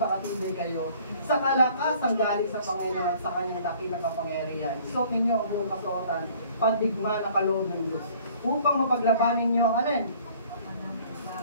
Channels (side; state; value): both; inverted; correlation -0.54